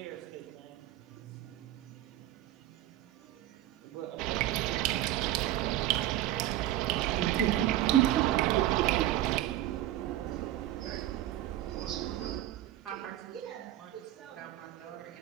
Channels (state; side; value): quieter; left; 13.7 dB